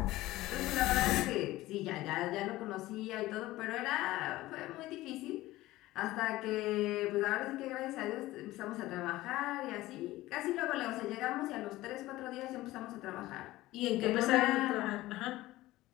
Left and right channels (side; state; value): right; quieter; 17.3 dB